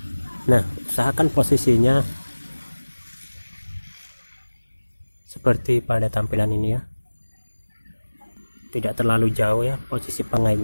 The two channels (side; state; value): both; inverted; correlation -1.00